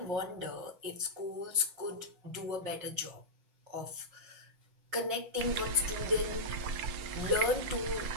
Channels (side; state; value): left; late; 6.1 ms